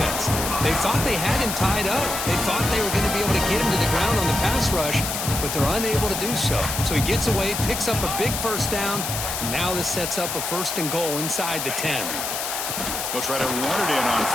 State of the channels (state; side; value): noise; left; hiss, 3 dB below the sound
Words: They thought they had him tied up. They thought they were going to be able to get him to the ground on the pass rush, but they're unable to do so. So he gets away, picks up a big first down. Now this sets up a first and goal inside the 10. They'll try to run it in on